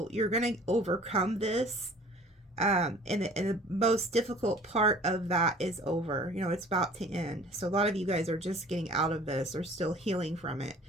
you're going to overcome this. And the most difficult part of that is over. You know, it's about to end. So a lot of you guys are just getting out of this or still healing from it.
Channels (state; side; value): normal; both; correlation 0.49